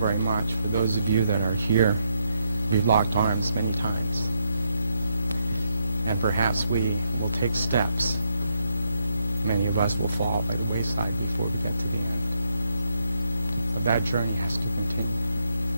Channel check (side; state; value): both; inverted; correlation -0.79